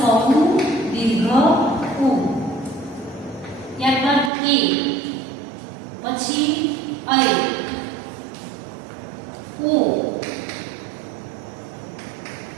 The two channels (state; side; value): drops out; left; at 4.3 s